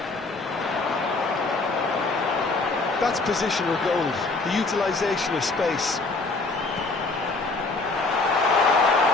That's positional goal, the utilisation of space.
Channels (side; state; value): right; quieter; 3.5 dB